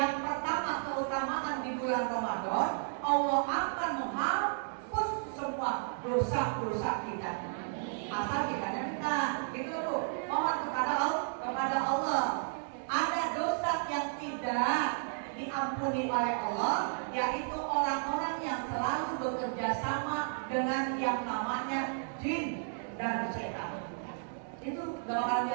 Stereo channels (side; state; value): left; silent; digital silence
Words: pertama, keutamaan di bulan Ramadan, Allah akan menghapus semua dosa-dosa kita. Asal kita minta, gitu Bu. Mohon kepada Allah. Ada dosa yang tidak diampuni oleh Allah, yaitu orang-orang yang selalu bekerja sama dengan yang namanya jin dan setan. Itu gak bakal